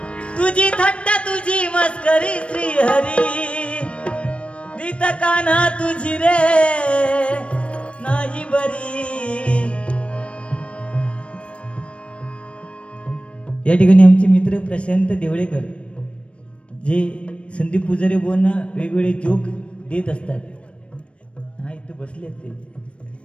तुझी थट्टा तुझी मस्करी श्रीहरी रीत कान्हा तुझी रे नाही बरी. या ठिकाणी आमचे मित्र प्रशांत देवळेकर जे संदीप पुजारी बोलना वेगवेगळे जोक देत असतात. हा इथे बसले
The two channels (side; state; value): right; late; 0.060 ms